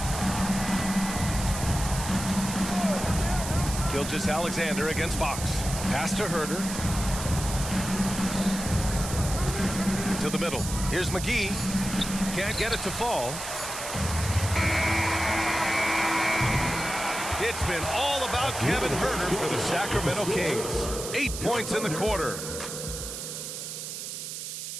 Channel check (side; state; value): right; noise; hiss, 7 dB below the sound